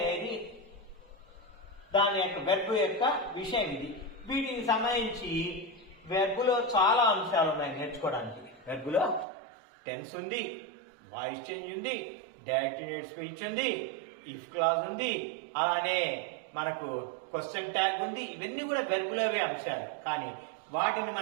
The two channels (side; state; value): left; drops out; at 9.2 s